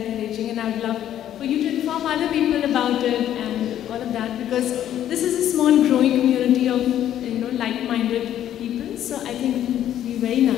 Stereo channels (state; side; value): quieter; right; 11.2 dB